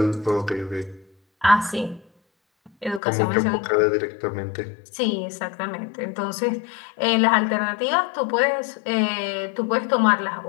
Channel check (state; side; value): drops out; right; at 3.0 s